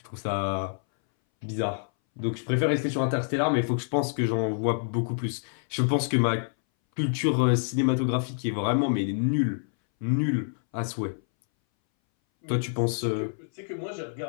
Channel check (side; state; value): right; silent; 60 dB below the other